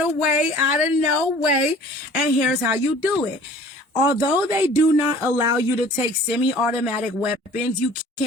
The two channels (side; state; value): both; normal; correlation 0.48